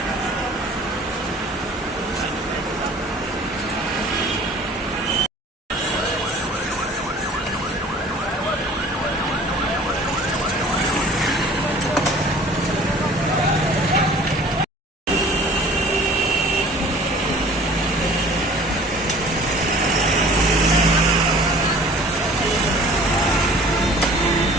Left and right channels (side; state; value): both; normal; correlation 0.48